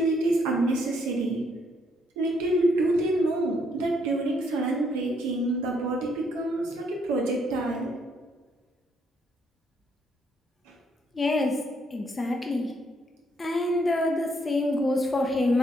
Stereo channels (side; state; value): both; normal; correlation 0.71